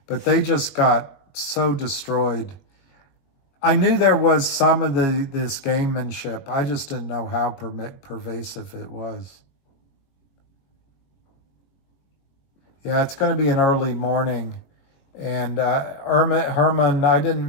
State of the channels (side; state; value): right; late; 21 ms